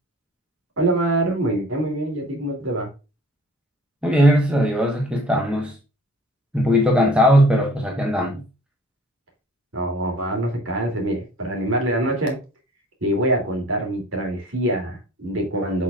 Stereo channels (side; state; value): both; normal; correlation 0.50